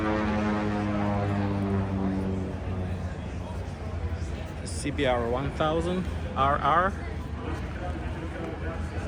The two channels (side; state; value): both; identical; correlation 1.00